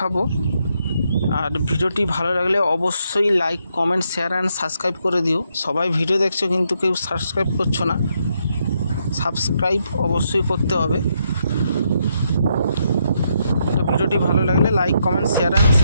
আর ভিডিওটি ভালো লাগলে অবশ্যই like, comment, share and subscribe করে দিও। সবাই ভিডিও দেখছো কিন্তু কেউ সাবস্ক্রাইব করছো না, সাবস্ক্রাইব অবশ্যই করতে হবে। তো ভিডিওটি ভালো লাগলে like, comment, share and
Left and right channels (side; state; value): both; inverted; correlation -0.77